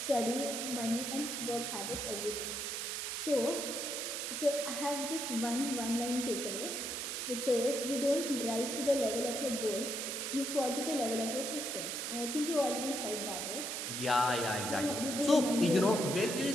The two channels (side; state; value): right; noise; hiss, 3 dB below the sound